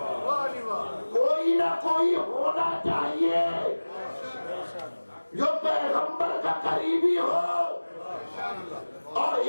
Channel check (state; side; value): inverted; both; correlation -1.00